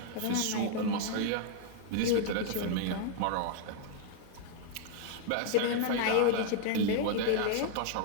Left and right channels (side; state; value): both; different; correlation -0.01